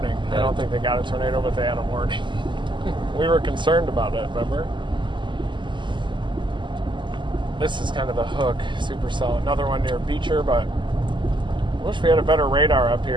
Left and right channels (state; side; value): late; left; 0.23 ms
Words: I don't think they got a tornado, but they had a warning. We were concerned about it, remember? This is kind of the hook, supercell. Another one near Beecher, but I wish we had a better radar up